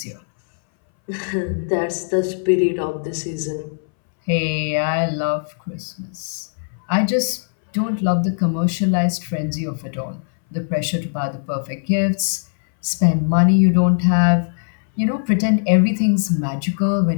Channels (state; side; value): silent; right; 63 dB below the other